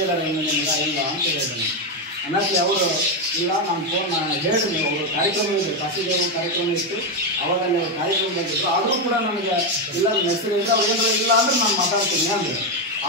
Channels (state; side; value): normal; both; correlation 0.07